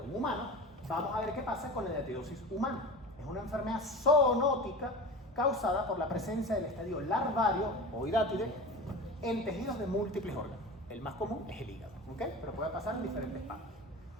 un humano, vamos a ver qué pasa con la diatidosis humana. Es una enfermedad zoonótica causada por la presencia del estadio larvario o hidátide en tejidos de múltiples órganos. El más común es el hígado, ¿ok? Pero puede pasar en diferentes partes.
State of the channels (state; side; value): normal; both; correlation 0.32